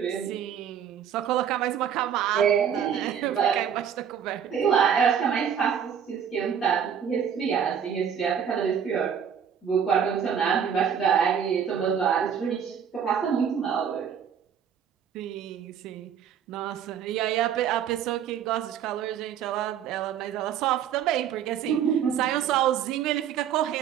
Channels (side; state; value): left; quieter; 8.2 dB